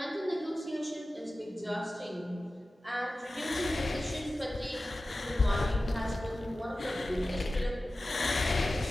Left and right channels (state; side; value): normal; both; correlation 0.95